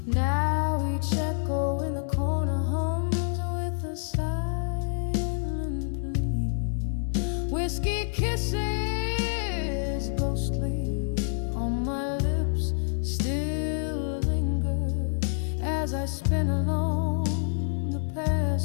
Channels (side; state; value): right; silent; 60 dB below the other